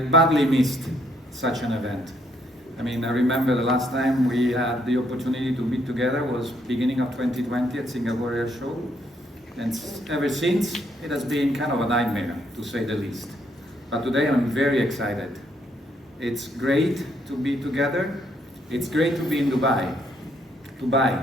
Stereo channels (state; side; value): normal; both; correlation 0.71